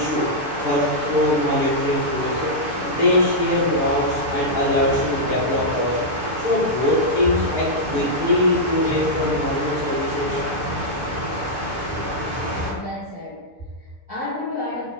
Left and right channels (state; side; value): late; left; 6.8 ms